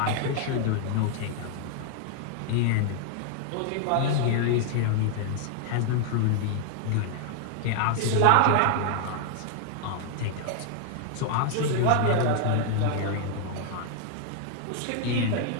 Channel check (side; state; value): both; different; correlation 0.00